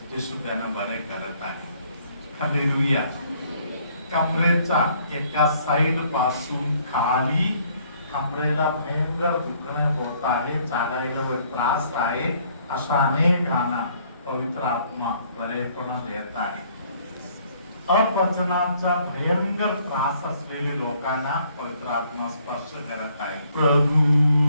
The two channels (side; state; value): both; inverted; correlation -0.64